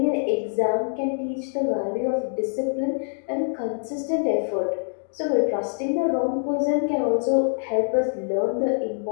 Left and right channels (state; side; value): silent; right; digital silence